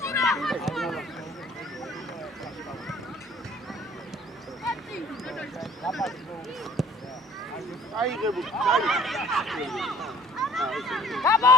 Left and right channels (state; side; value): normal; both; correlation 0.54